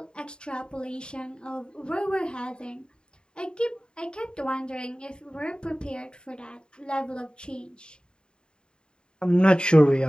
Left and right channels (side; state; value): right; late; 0.050 ms